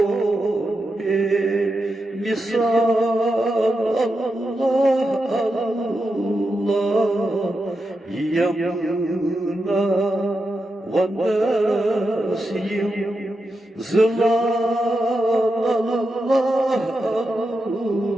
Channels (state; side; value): normal; both; correlation 0.87